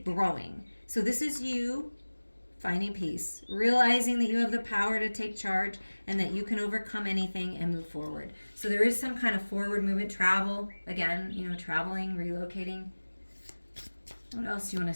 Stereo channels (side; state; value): both; inverted; correlation -1.00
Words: growing. So this is you finding peace, realizing that you have the power to take charge and that you can overcome anything and move forward. So there is some kind of forward movement, travel, again, traveling, relocating. What else do you want